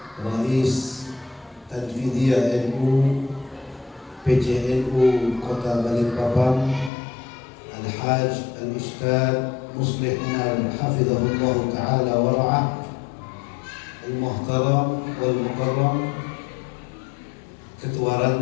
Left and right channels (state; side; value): drops out; right; at 6.9 s